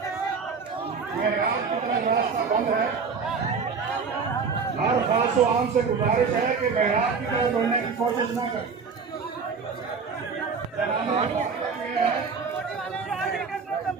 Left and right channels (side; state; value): left; quieter; 5.3 dB